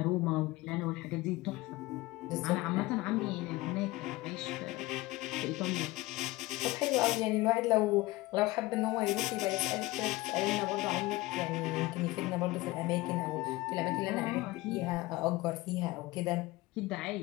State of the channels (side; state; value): right; quieter; 19.8 dB